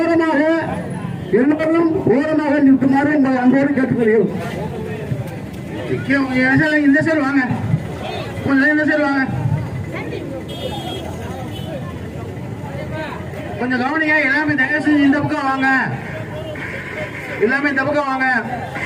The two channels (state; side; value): identical; both; correlation 1.00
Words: எல்லோரும் ஓரமாக நிற்குமாறு உங்களை அன்போடு கேட்டுக்கொள்கிறோம். இந்த சைடு வாங்க. கொஞ்சம் இந்த சைடு வாங்க. கொஞ்சம் கவனிங்க. எல்லாமே தயவு செஞ்சு இந்த பக்கம் வாங்க. எல்லாமே இந்த பக்கம் வாங்க.